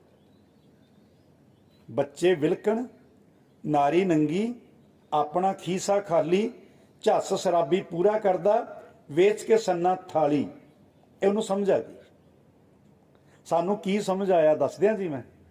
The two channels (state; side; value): identical; both; correlation 1.00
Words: ਬੱਚੇ ਵਿਲਕਣ, ਨਾਰੀ ਨੰਗੀ, ਆਪਣਾ ਖੀਸਾ ਖਾਲੀ, ਝੱਸ ਸ਼ਰਾਬੀ ਪੂਰਾ ਕਰਦਾ, ਵੇਚ ਕੇ ਸੰਨਾ ਥਾਲੀ। ਇਹ ਉਹਨੂੰ ਸਮਝ ਆ ਗਈ। ਸਾਨੂੰ ਕੀ ਸਮਝ ਆਇਆ ਦੱਸ ਦਿਆਂ ਜੀ। ਮੈਂ